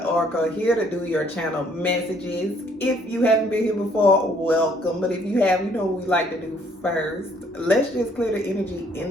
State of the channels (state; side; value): normal; both; correlation 0.64